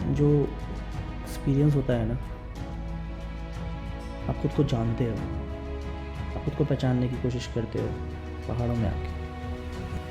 जो एक्सपीरियंस होता है ना, आप खुद को जानते हो, आप खुद को पहचानने की कोशिश करते हो पहाड़ों में आके।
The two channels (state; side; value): identical; both; correlation 1.00